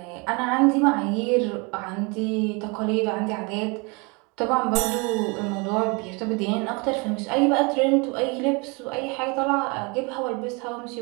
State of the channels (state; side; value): quieter; left; 29.9 dB